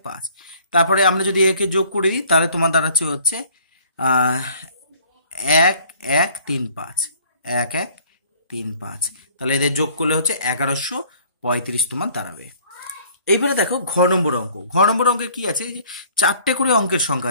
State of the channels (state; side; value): inverted; both; correlation -0.55